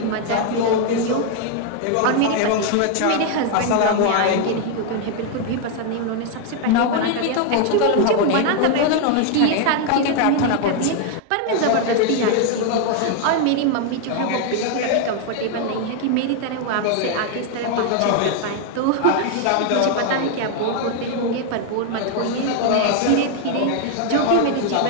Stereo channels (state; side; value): different; both; correlation 0.00